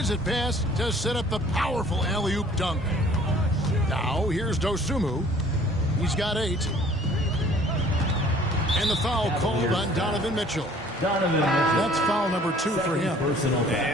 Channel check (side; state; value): both; normal; correlation 0.54